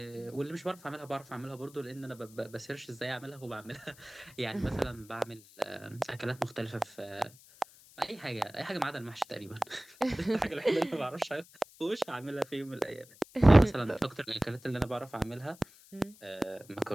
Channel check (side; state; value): left; noise; hiss, 23 dB below the sound